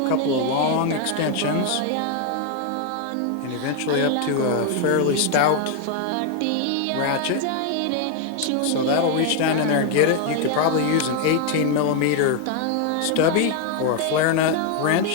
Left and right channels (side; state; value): both; different; correlation 0.01